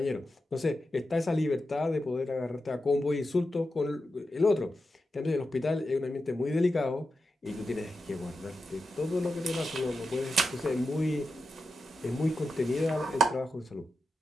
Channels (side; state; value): both; normal; correlation 0.90